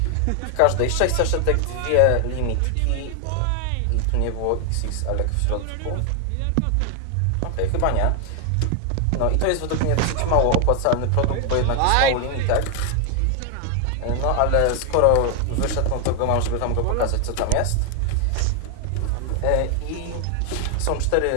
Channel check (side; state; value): both; different; correlation 0.00